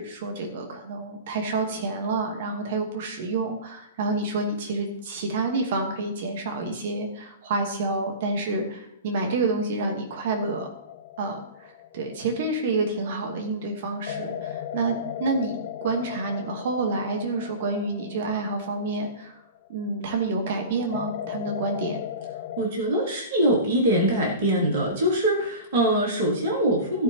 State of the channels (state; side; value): inverted; both; correlation -0.33